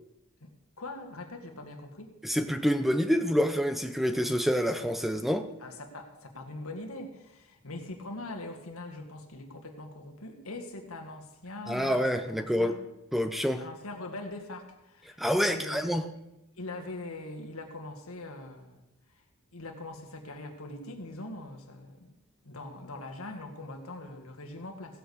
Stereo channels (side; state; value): both; normal; correlation 0.82